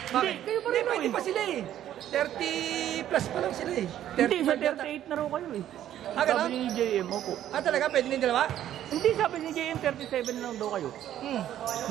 Bakit? Kayo pa Hindi, rin pwede eh. pa sila eh. 30 plus pa lang sila eh. Hindi, sa 35 38 na raw kayo eh. Ah, ganun? Sabi ni JM, opo. Ah, talaga? Pwede na yung dalawa? Hindi, sabi ni JM, 37 na lang daw kayo.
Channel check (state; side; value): quieter; left; 11.6 dB